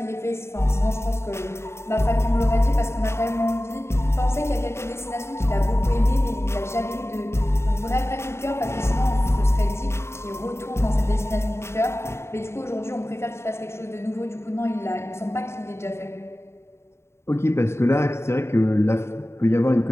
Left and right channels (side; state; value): right; late; 0.13 ms